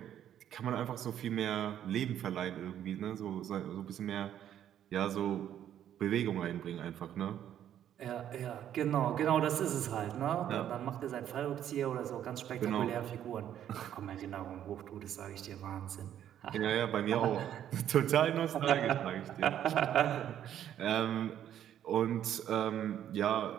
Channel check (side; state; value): left; quieter; 10.5 dB